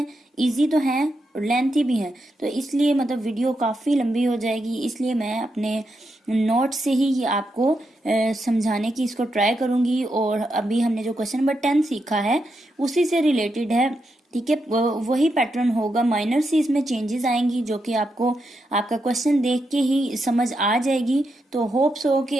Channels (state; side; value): normal; both; correlation 0.84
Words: इजी तो हैं और लेंथी भी हैं, तो इसलिए मतलब वीडियो काफ़ी लंबी हो जाएगी। इसलिए मैं अपने नोट से ही ये आपको समझाने की इसको ट्राई करूंगी। और अभी हमने जो क्वेश्चन नंबर 10 सीखा है उसी से रिलेटेड है, ठीक है। वही पैटर्न होगा, माइनर सी इसमें चेंजेस आएंगी जो कि आपको आपका क्वेश्चन देख के ही समझ आ जाएगी। तो होप्स हो